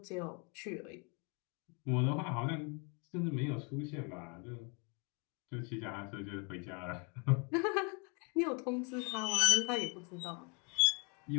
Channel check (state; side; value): quieter; right; 34.4 dB